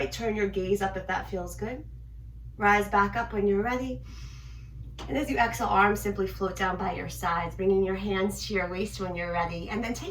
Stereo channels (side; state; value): both; identical; correlation 1.00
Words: turn your gaze up if that feels good. Rise back up when you're ready. And as you exhale, arms simply float down by your sides, bringing your hands to your waist when you're ready, and then